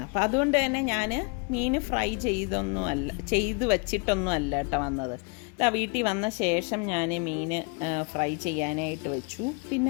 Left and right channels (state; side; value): quieter; right; 32.2 dB